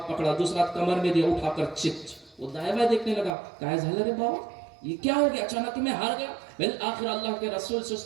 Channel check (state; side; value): drops out; left; at 3.4 s